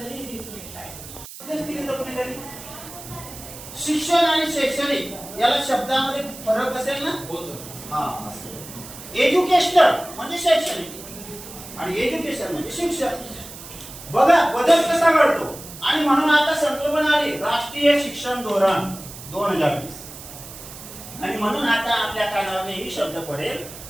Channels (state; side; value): noise; right; hiss, 14 dB below the sound